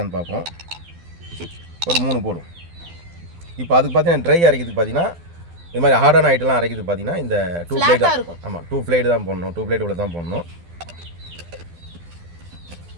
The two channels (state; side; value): late; left; 12 ms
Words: பார்ப்போம். ஒரு 3 போடும். இப்போ அதுக்கு பார்த்தீங்கன்னா ட்ரை அரைக்கிறதுக்கு பார்த்தீங்கன்னா இது மாதிரி ஹார்டான ஐட்டம்லாம் அரைக்கிறதுக்கு பார்த்தீங்கன்னா இந்த 2 பிளேட் தான். ஆமாம், 2 பிளேட் தான் போடணும். 2 பிளேட் உள்ள தான் போடணும்.